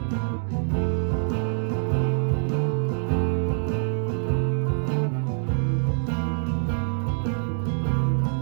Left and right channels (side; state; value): left; silent; digital silence